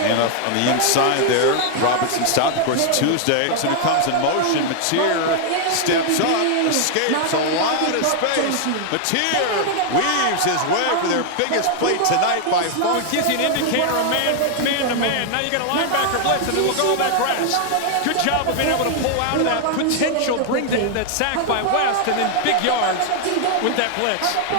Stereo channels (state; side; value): different; both; correlation 0.00